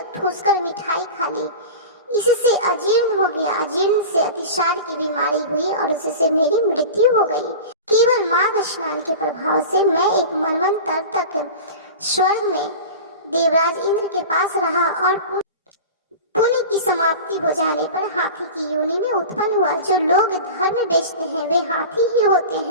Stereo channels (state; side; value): inverted; both; correlation -0.32